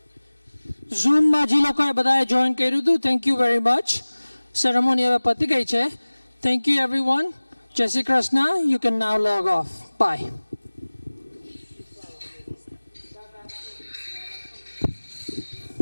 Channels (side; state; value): both; inverted; correlation -1.00